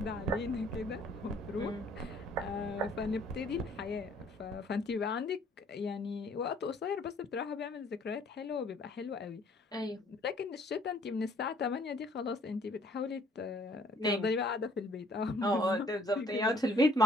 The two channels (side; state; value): both; normal; correlation 0.59